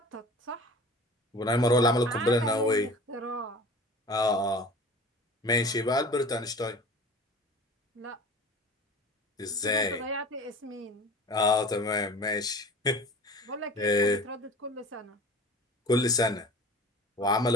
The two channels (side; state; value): both; normal; correlation 0.40